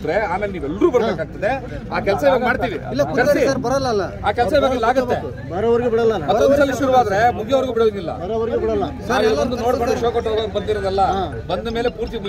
ಆಮೇಲೆ ನೀವೆಲ್ಲರೂ ಬರ್ಬೇಕಾಗ್ತದೆ. ಆ ಕೆಲಸ ಇವಾಗ ಮಾಡ್ತೀವಿ. ಸರ್ ಬರಲ್ಲ. ಆ ಕೆಲಸ ಇವಾಗ ಆಗುತ್ತೆ. ಬರೋವರೆಗೂ ಬಿಡಲ್ಲ. ಮತ್ತೊಂದ್ಸಲ ಶುರುವಾದ್ರೆ ಮುಗಿಯೋವರೆಗೂ ಬಿಡೋದಿಲ್ಲ. ಬರೋವರೆಗೂ ಬಿಡಲ್ಲ. ಒಂದು ನೋಡ್ಕೊಂಡು ಶೋ ಕೊಟ್ಟು ಹೋಗೋಕೆ ಬಂದಿರೋದಲ್ಲ, ಬಂದ ಮೇಲೆ ಪೂರ್ತಿ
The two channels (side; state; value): both; identical; correlation 1.00